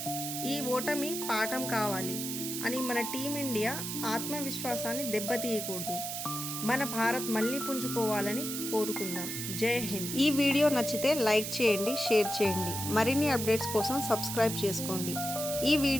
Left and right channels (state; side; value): noise; right; hiss, 5 dB below the sound